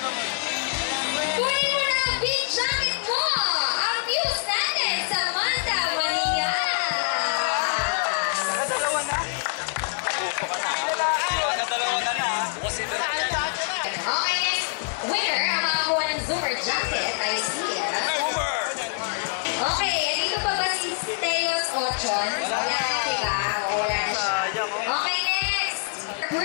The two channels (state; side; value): silent; right; digital silence